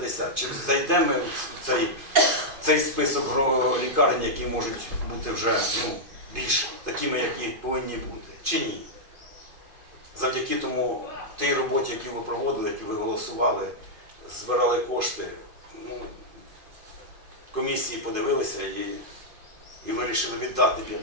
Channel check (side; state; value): left; late; 2.5 ms